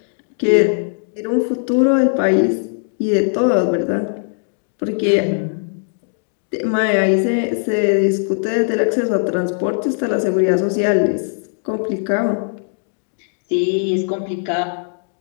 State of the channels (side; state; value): right; silent; digital silence